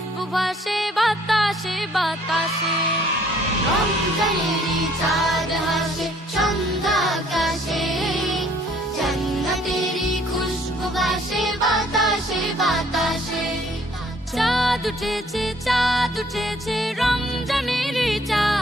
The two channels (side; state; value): both; normal; correlation 0.60